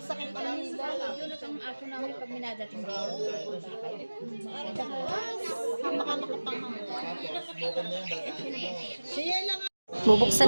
pa lang nila. Yun ang aso namin pag minadating dito. Baka makapangang. Siya lang. Bubuksan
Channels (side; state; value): both; inverted; correlation -1.00